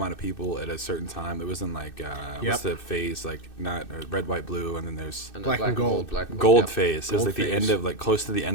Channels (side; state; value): right; late; 2.6 ms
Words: of people at a certain time. It was in like what's the phase, like not red, white, blue, and then there's And Black and gold. Black and gold yep. phase. It was Gold like the end phase. of like close to the